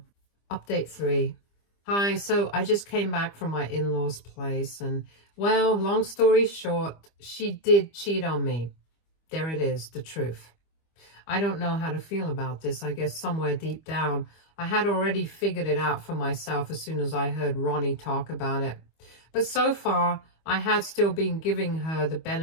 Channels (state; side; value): late; right; 25 ms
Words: Update 3. Hi, so I just came back from my in-laws' place, and well, long story short, she did cheat on me. There it is, the truth. I don't know how to feel about this. I guess somewhere deep down, I had already figured it out for myself as soon as I heard Ronnie talk about it. But so far, I had still been giving her the